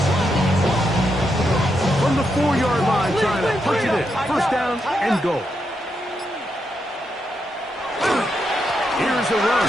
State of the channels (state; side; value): normal; both; correlation 0.83